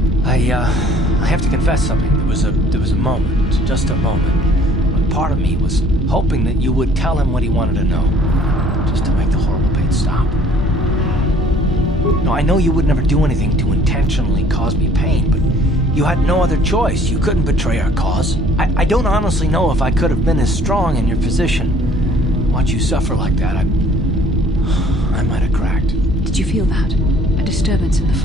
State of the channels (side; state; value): both; normal; correlation 0.55